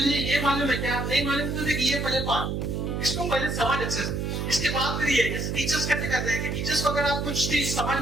ये मालूम है क्या, नहीं मालूम तो देख ये पहले पढ़, इसको पहले समझ अच्छे से, इसके बाद फिर ये टीचर्स कैसे करते हैं कि टीचर्स को अगर आप कुछ चीज समझ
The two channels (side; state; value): right; noise; hum, 2 dB below the sound